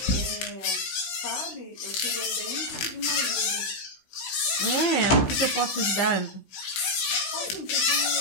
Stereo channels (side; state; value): right; late; 16 ms